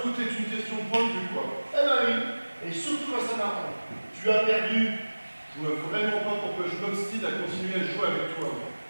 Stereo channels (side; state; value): both; inverted; correlation -1.00